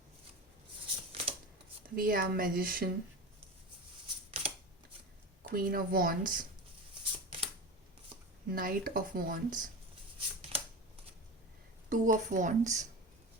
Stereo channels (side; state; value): both; normal; correlation 0.26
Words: We have Magician, Queen of Wands, Knight of Wands, Two of Wands,